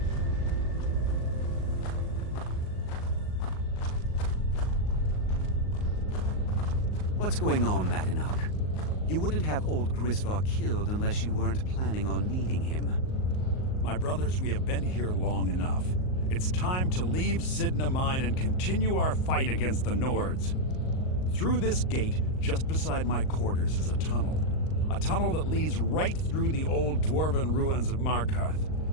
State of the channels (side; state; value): right; late; 38 ms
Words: What's going on, Madanach? You wouldn't have old Grisvar killed unless you weren't planning on needing him. My brothers, we have been here long enough. It's time to leave Sidna Mine and continue our fight against the Nords. Through this gate, just beside my quarters, is a tunnel. A tunnel that leads right through the old dwarven ruins of